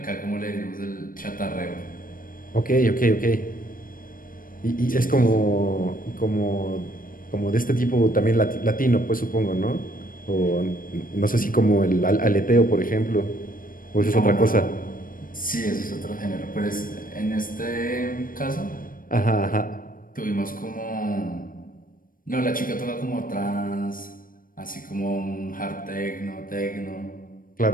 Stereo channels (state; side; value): late; right; 0.40 ms